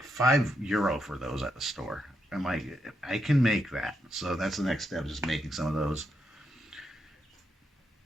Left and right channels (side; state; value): both; normal; correlation 0.81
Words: €5 for those at the store. I'm like, I can make that. So that's the next step, just making some of those,